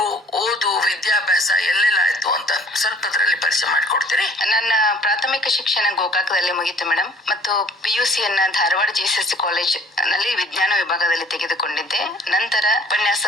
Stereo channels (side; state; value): both; normal; correlation 0.53